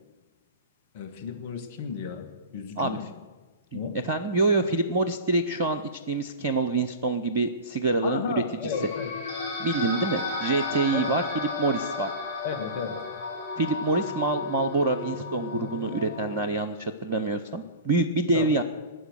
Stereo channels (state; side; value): inverted; both; correlation -0.30